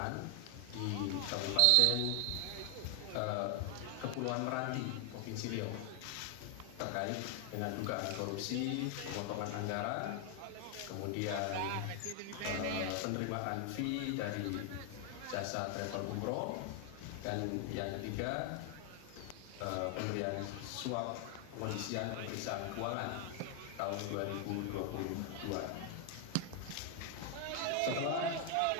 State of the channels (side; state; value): both; different; correlation 0.00